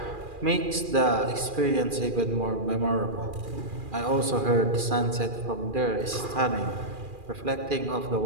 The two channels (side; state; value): left; late; 2.4 ms